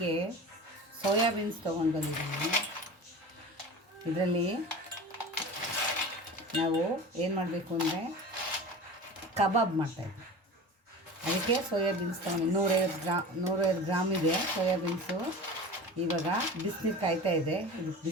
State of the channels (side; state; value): both; normal; correlation 0.34